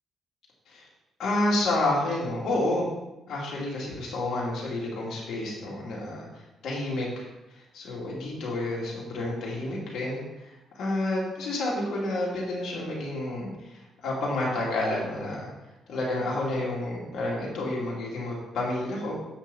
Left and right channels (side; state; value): both; normal; correlation 0.74